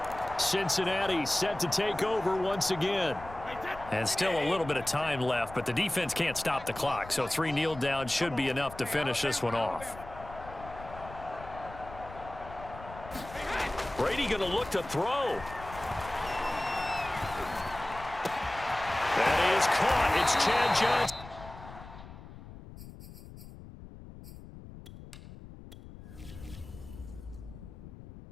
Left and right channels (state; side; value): noise; left; rumble, 15 dB below the sound